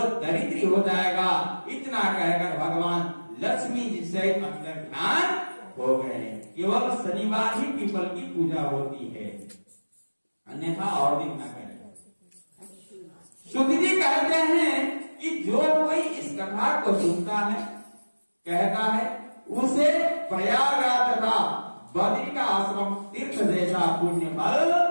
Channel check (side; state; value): both; inverted; correlation -1.00